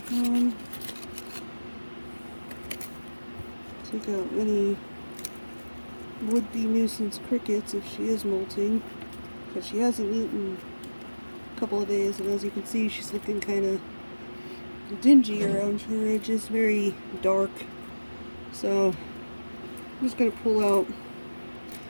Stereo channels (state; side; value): inverted; both; correlation -1.00